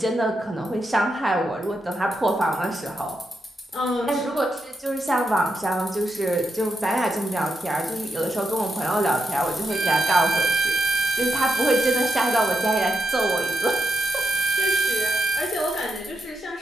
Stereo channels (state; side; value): normal; both; correlation 0.84